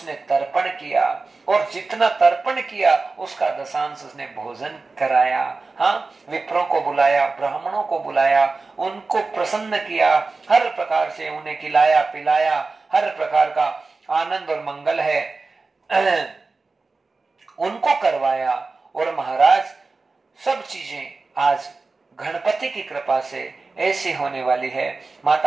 तर्पण किया, और जितना तर्पण किया उसका दशांश उसने भोजन कराया। हाँ, विप्रों को बुलाया, ब्राह्मणों को बुलाया, उनको प्रसन्न किया, हर प्रकार से उन्हें खिलाया पिलाया, हर प्रकार का आनंद और मंगल है उनको करवाया। और महाराज सब चीजें आज गणपति की कृपा से ऐसी होने वाली है।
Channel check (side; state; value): left; quieter; 3.9 dB